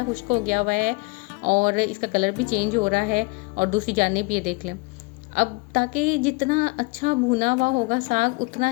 खुश्क हो गया हुआ है और इसका कलर भी चेंज हो रहा है, और दूसरी जानिब ये देख लें। अब ताकि जितना अच्छा भुना हुआ होगा साग उतना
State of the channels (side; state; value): right; quieter; 26.5 dB